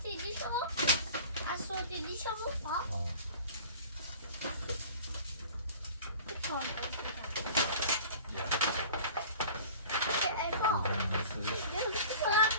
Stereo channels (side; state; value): both; inverted; correlation -0.42